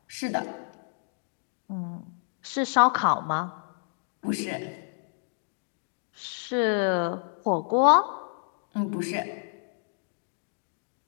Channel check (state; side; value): silent; right; digital silence